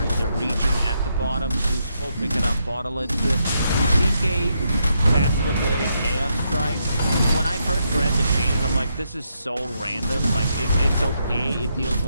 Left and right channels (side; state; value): both; inverted; correlation -0.79